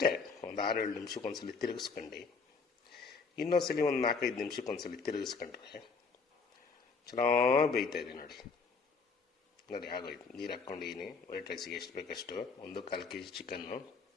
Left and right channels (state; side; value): quieter; right; 4.8 dB